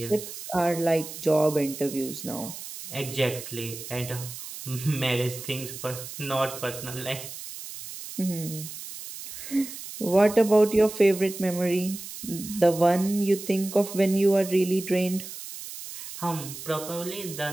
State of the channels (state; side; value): noise; right; hiss, 11 dB below the sound